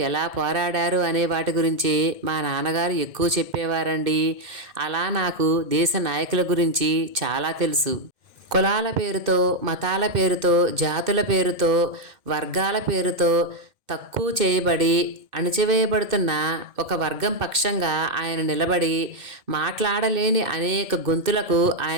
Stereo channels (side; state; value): left; late; 2.1 ms